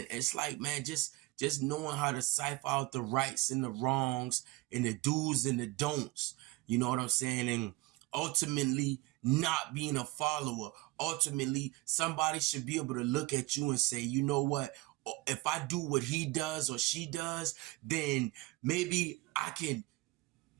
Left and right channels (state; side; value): quieter; left; 20.8 dB